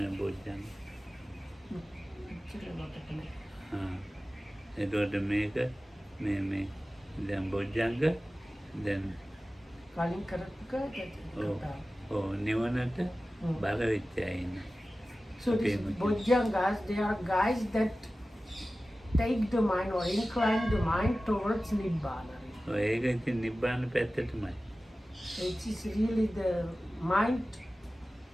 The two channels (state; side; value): normal; both; correlation 0.96